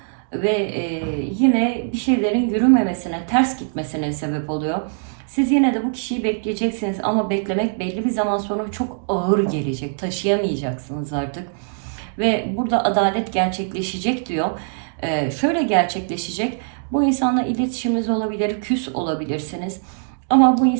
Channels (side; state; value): left; silent; digital silence